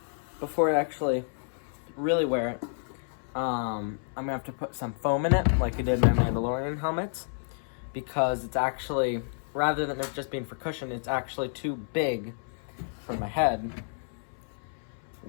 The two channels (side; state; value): right; silent; 58 dB below the other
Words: before I actually really wear it, I'm gonna have to put some foam in it, like I did my Mandalorian helmets, because it's actually, rather than it just being for cushion, it's actually too big for my head,